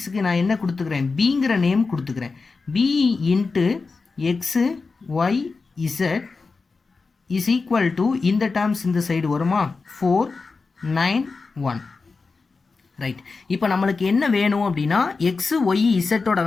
நான் என்ன கொடுத்துக்கிறேன், பிங்கிற நேம் கொடுத்துக்கிறேன். B into X Y Z is equal to இந்த டேர்ம்ஸ் இந்த சைடு வருமா, 4 9 1. ரைட், இப்போ நம்மளுக்கு என்ன வேணும் அப்படின்னா எக்ஸு ஒய் இசட்டோட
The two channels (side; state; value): right; quieter; 4.3 dB